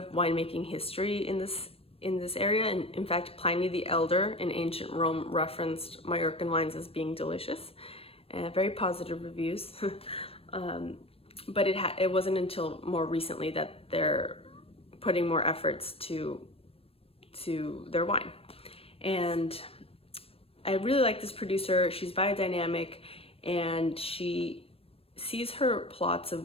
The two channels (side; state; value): right; late; 0.28 ms